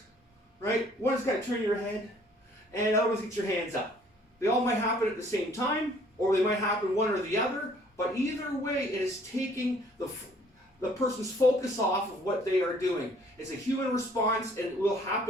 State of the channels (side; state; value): both; normal; correlation 0.59